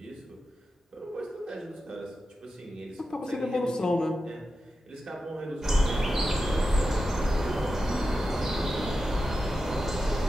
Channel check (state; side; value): normal; both; correlation 0.91